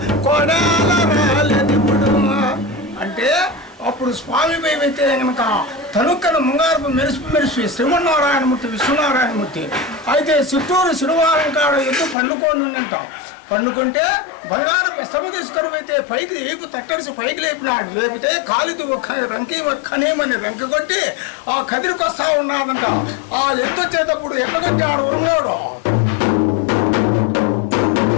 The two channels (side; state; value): right; drops out; at 12.2 s